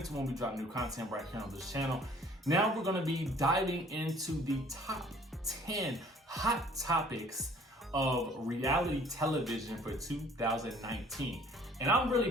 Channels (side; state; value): both; normal; correlation 0.55